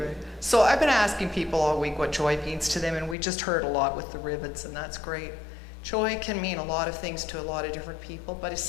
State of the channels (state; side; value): drops out; right; at 3.2 s